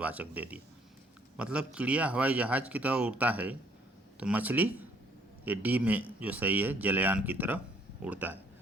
दे दिया। मतलब चिड़िया हवाई जहाज़ की तरह उड़ता है, तो मछली ये डी में जो सही है, जलयान की तरह उड़ता है।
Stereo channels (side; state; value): both; normal; correlation 0.62